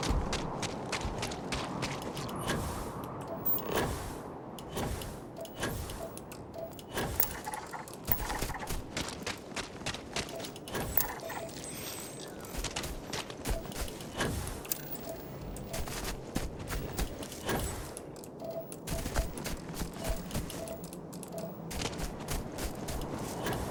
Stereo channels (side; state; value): both; identical; correlation 1.00